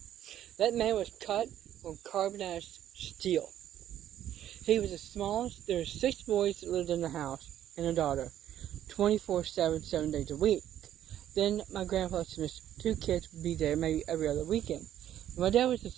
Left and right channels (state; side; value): quieter; left; 11.3 dB